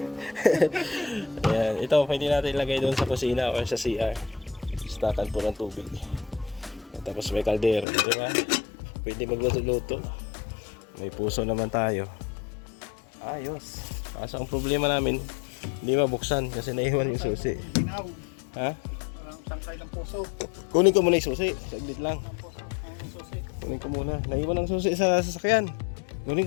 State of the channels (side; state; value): right; drops out; at 7.9 s